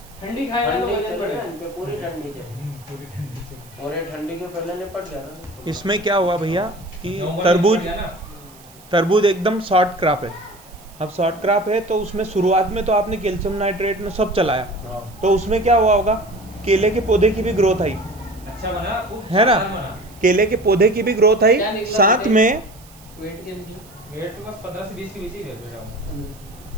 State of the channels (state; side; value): noise; right; hiss, 24 dB below the sound